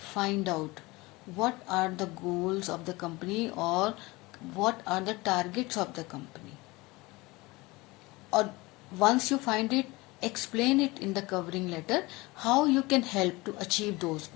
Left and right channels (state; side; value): quieter; right; 22.4 dB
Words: find out what are the goals of the company और what are the targets of the company. Or once you find it, explain it in the covering letter how you can help to achieve those